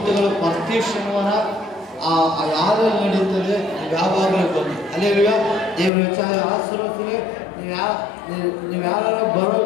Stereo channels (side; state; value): right; drops out; at 5.9 s